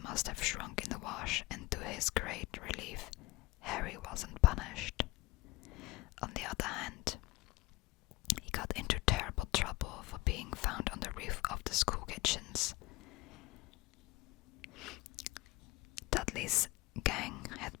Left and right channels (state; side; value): quieter; right; 20.1 dB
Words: must have shrunk in the wash, and to his great relief, Harry wasn't punished. On the other hand, he got into terrible trouble for being found on the roof of the school kitchens. Dudley's gang had